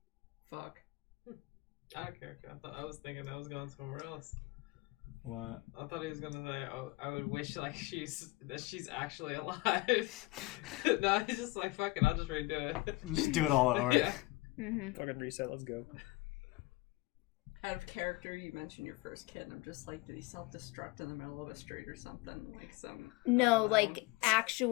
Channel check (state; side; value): quieter; right; 21.5 dB